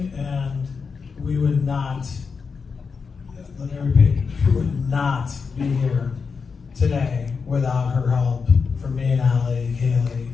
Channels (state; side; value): quieter; right; 5.3 dB